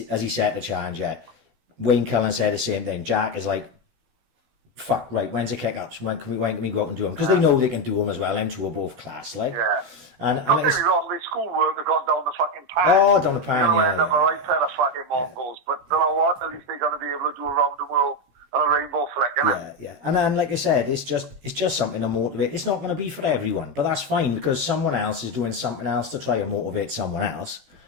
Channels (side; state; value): left; late; 16 ms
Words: Has he set the challenge yet? Wayne Cullen said the same thing. Jack is like, fuck, right, when's the kick-ups? When can we go out and do them? Because they know they can do them as well. Them two are both class, like. Yeah. And don't get me wrong, the schoolwork have gone down the fucking pan. Oh, down the pan, yeah. End up a right pair of fucking Mongols. But you know what? At least they're going to be able to do around the world on a rainbow flick, innit? Yeah. And then, like I said, it's just something to motivate. It's not going to be for everyone, but that's fine because someone else is doing something else to try and motivate someone else.